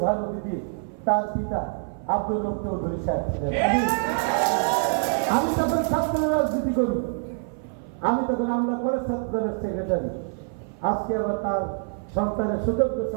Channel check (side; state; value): left; silent; 56 dB below the other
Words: অতিথি, তার পিতা আব্দুল রব চৌধুরী সাহেব ছিলেন। আমি তখন ছাত্র রাজনীতি করি, আমি তখন আমরা কলেজ ছাত্রদলের সেক্রেটারি। আজকে আবার তার সন্তানের সুযোগ্য